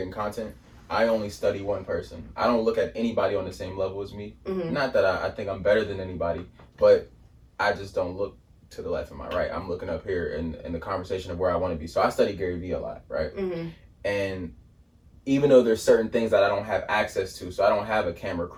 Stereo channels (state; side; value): identical; both; correlation 1.00